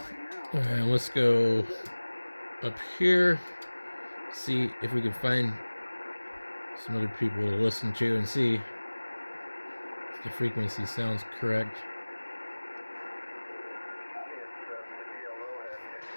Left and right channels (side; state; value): both; inverted; correlation -1.00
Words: Alright, let's go up here, see if we can find some other people to listen to and see if the frequency sounds correct.